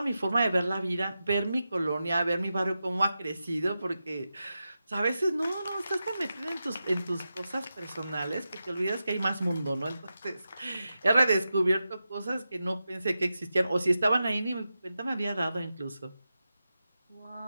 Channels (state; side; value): inverted; both; correlation -0.91